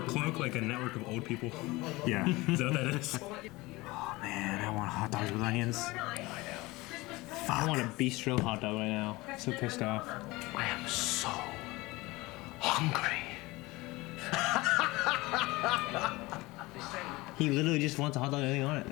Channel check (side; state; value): right; quieter; 21.5 dB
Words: cloak like a network of old people? Yeah. Is that what that is? Oh man, I want hot dogs with onions. I want a bistro hot dog right now. So pissed off. I am so hungry. He literally just wants a hot dog with anything on it,